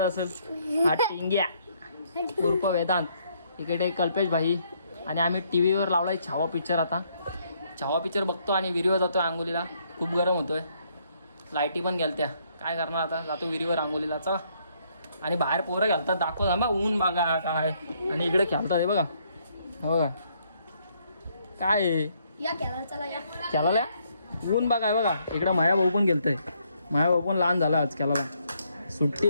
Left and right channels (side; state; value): both; inverted; correlation -0.70